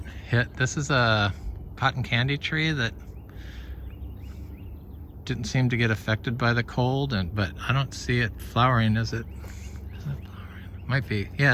hit. This is a cotton candy tree that didn't seem to get affected by the cold, but I don't see it flowering. Is it flowering? Might be.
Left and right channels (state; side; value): identical; both; correlation 1.00